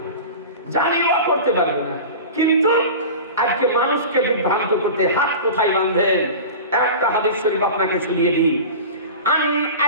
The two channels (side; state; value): both; inverted; correlation -0.33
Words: জানিও করতে পারবে না। কিন্তু আজকে মানুষকে বিভ্রান্ত করতে হাত কোথায় বাঁধবেন? একটা হাদিস শরীফ আপনাকে শুনিয়ে দিই। আন